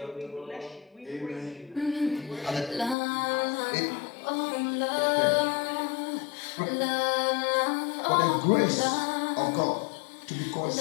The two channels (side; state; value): right; drops out; at 3.0 s